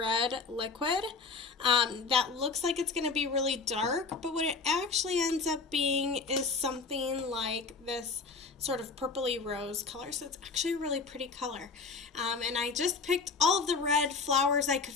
liquid that looks like it's going to be really dark, but what it actually ends up being is something like this sort of purpley rose color, so it's actually a really pretty color. And I just picked all of the red flowers I could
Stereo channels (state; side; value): quieter; right; 4.5 dB